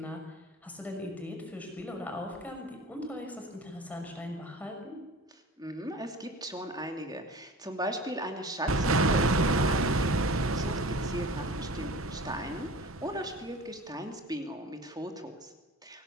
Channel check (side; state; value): both; normal; correlation 0.39